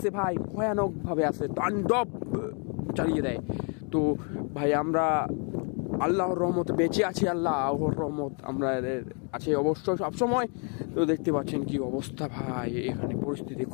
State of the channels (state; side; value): quieter; right; 38.3 dB